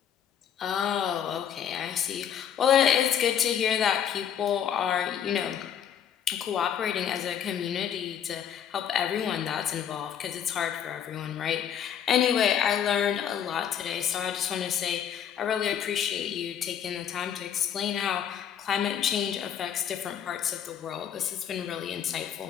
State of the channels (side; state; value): right; quieter; 8.9 dB